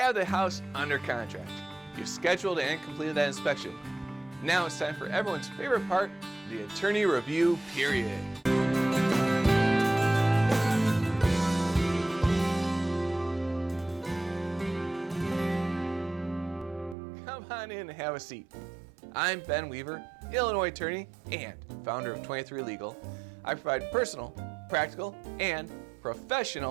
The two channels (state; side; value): drops out; left; at 16.9 s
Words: the house under contract. You've scheduled and completed that inspection. Now it's time for everyone's favorite part, the attorney review period. Come on in and have a seat. I'm Ben Weaver, Illinois attorney and founder of 23 Legal. I provide personal, practical, and